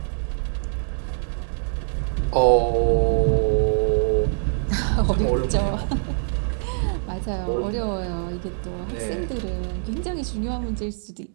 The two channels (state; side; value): silent; left; digital silence